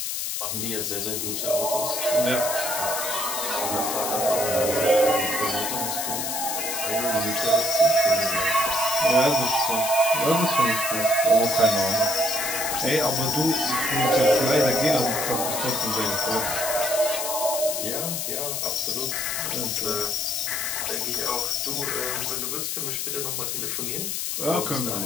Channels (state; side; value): noise; left; hiss, 2 dB below the sound